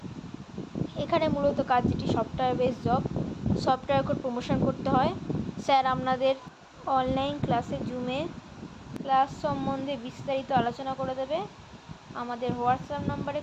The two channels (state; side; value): identical; both; correlation 1.00